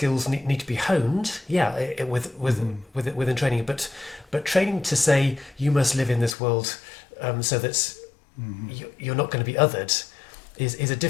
need to be honed, within training. But training to say you must live in this world so that you're not going to be othered is a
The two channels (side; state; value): right; drops out; at 6.4 s